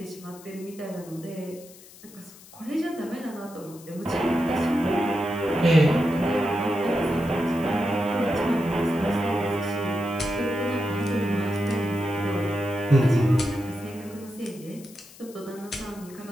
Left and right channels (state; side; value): noise; left; hiss, 21 dB below the sound